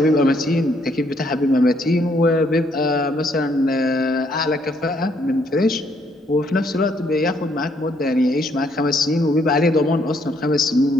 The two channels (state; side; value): normal; both; correlation 0.70